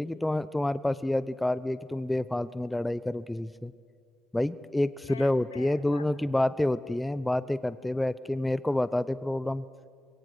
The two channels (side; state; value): both; normal; correlation 0.98